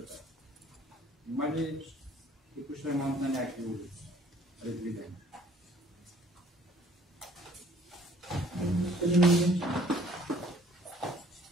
Има ли текущ ремонт на някакви улици? Предвидени.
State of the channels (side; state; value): both; normal; correlation 0.57